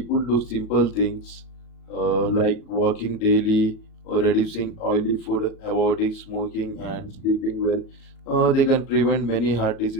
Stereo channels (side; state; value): right; late; 37 ms